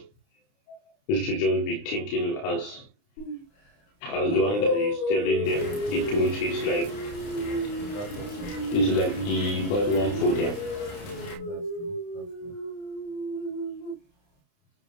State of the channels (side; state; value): right; late; 29 ms